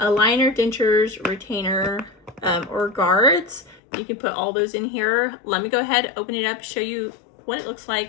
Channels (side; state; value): right; drops out; at 3.8 s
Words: liner, dentures, retainer, or guards. You can put all those in here. Let me go ahead, open it up, show you what it looks